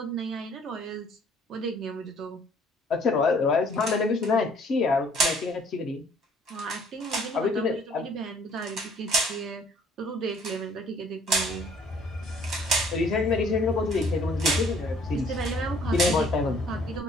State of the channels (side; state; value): both; normal; correlation 0.58